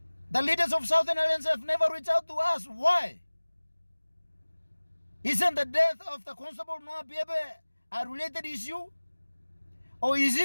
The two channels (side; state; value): both; inverted; correlation -1.00